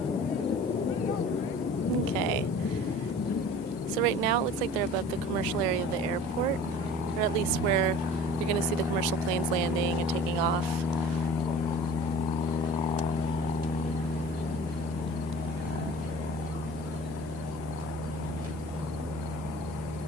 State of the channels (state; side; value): normal; both; correlation 0.43